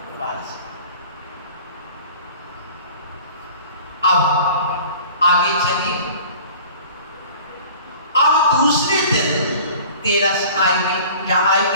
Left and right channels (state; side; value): inverted; both; correlation -0.45